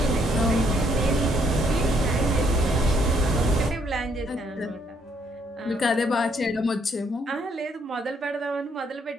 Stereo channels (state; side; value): normal; both; correlation 0.69